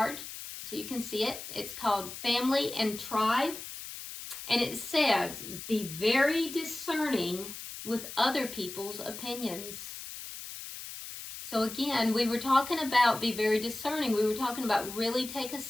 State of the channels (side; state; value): left; noise; hiss, 10 dB below the sound